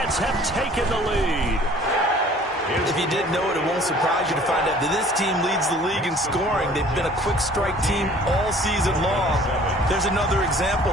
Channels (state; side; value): normal; both; correlation 0.52